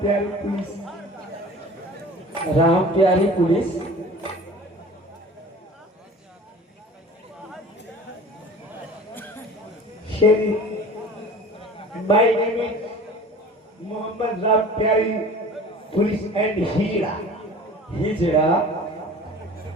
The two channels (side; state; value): both; normal; correlation 0.42